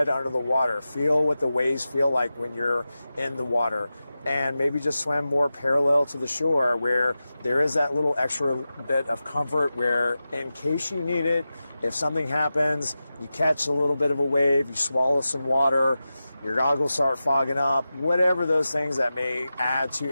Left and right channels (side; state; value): both; inverted; correlation -0.93